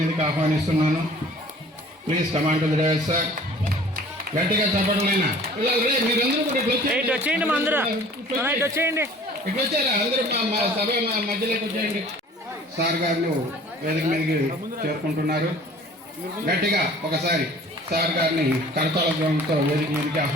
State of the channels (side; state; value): both; normal; correlation 0.49